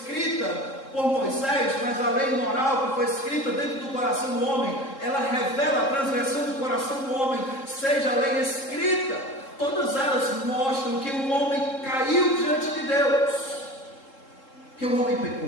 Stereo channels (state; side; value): late; right; 3.7 ms